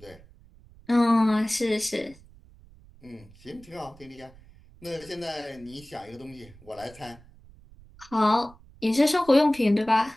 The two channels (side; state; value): right; noise; rumble, 24 dB below the sound